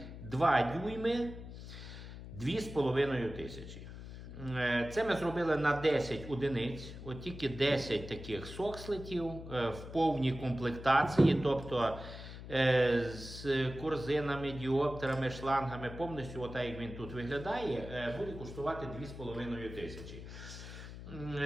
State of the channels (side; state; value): left; noise; hum, 12 dB below the sound